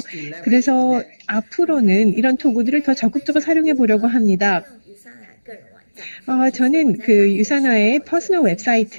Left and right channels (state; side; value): inverted; both; correlation -1.00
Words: 그래서 앞으로는 이런 도구들을 더 적극적으로 사용해 보려고 합니다. 저는 그 유산화의 퍼스널